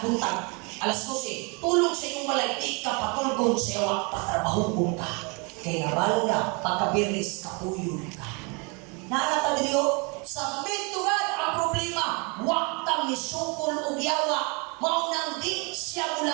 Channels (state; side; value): quieter; left; 31.4 dB